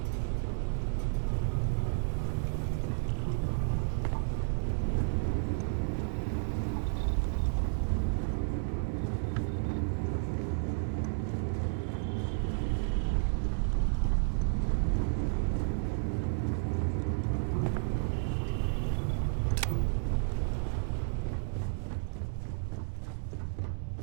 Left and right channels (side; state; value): left; silent; 56 dB below the other